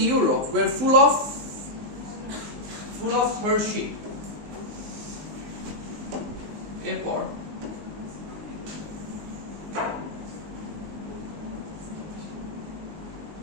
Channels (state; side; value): late; left; 19 ms